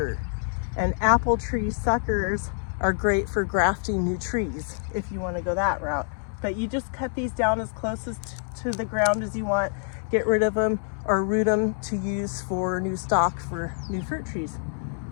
And apple tree suckers are great for grafting new trees if you want to go that route. But you just cut these down as close to the ground as you want, get rid of them or root them to use for new stock for new fruit trees.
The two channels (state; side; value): silent; right; 61 dB below the other